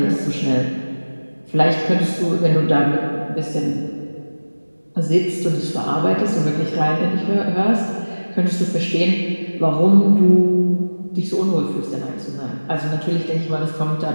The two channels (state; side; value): inverted; both; correlation -1.00